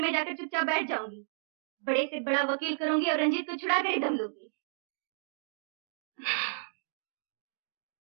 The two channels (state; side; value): silent; left; digital silence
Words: जाकर चुपचाप बैठ जाऊंगी। बड़े से बड़ा वकील करूंगी और रंजीत को छुड़ा कर ही दम लूंगी।